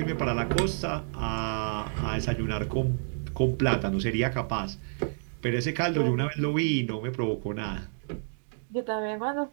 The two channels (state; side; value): silent; left; digital silence